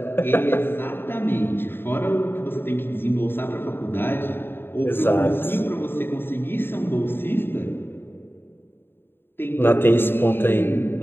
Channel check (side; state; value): right; late; 0.10 ms